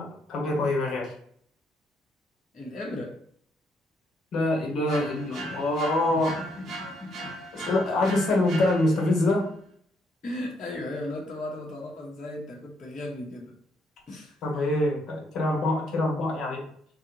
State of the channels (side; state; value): both; normal; correlation 0.73